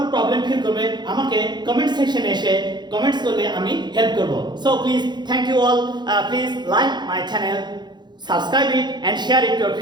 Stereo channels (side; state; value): left; late; 0.21 ms